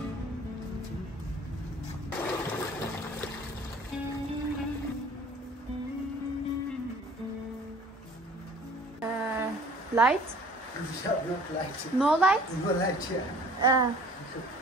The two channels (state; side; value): normal; both; correlation 0.51